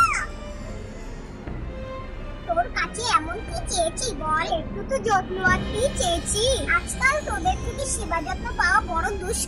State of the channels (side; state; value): both; identical; correlation 1.00